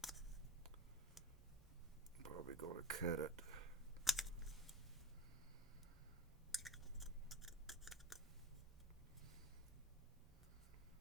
Probably gonna cut it.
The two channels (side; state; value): both; normal; correlation 0.32